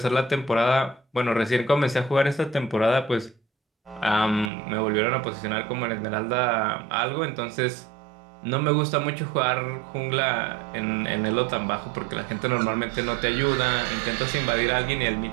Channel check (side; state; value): left; drops out; at 4.5 s